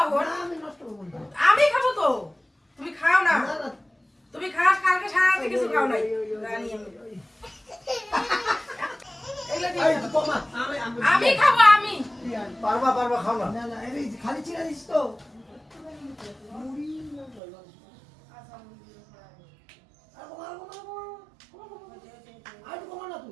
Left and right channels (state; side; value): drops out; left; at 17.4 s